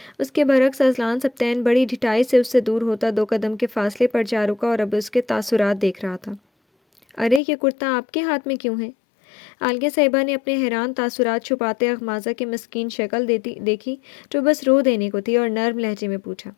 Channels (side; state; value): right; drops out; at 7.4 s